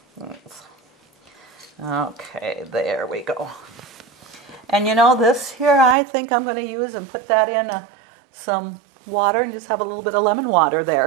Okay, there we go. And this here, I think I'm going to use and put that in some water and just have a little bit of lemon water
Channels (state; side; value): drops out; left; at 6.0 s